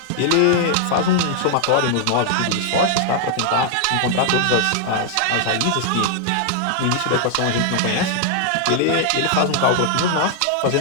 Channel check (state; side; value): different; both; correlation 0.00